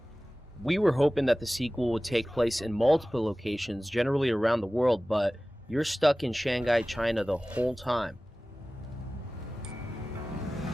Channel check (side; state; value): both; normal; correlation 0.97